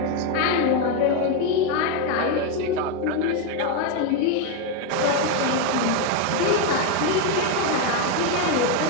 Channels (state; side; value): different; both; correlation 0.02